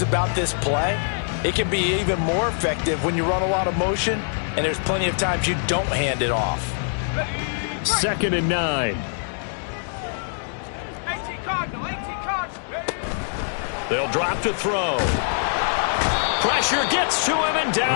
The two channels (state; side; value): silent; right; digital silence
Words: about this play, it can be even more effective when you run a lot of motion, and there's plenty of times you don't hand it off. 2nd and 9. They'll drop to throw. Pressure gets to him, and